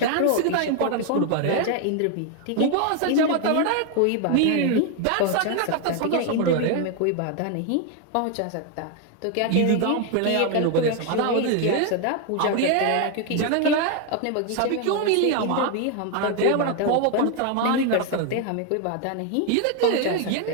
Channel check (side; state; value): both; different; correlation 0.01